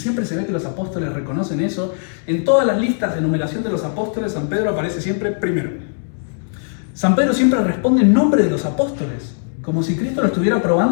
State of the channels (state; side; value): silent; right; digital silence